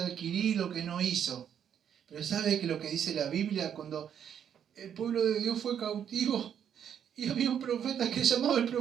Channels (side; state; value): left; quieter; 8.8 dB